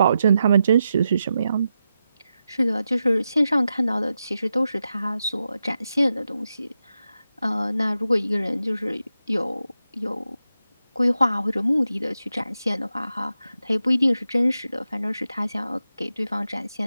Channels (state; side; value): inverted; both; correlation -0.89